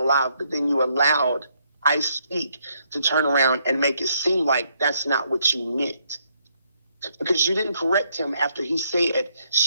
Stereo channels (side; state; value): both; inverted; correlation -0.72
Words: live, but then you allowed I Speak to turn around and make it seem like that's not what you meant. Because you didn't correct him after he said